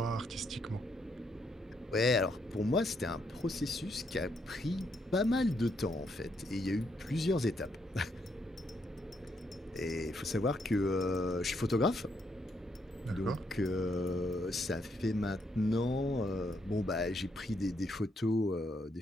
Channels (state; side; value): normal; both; correlation 0.75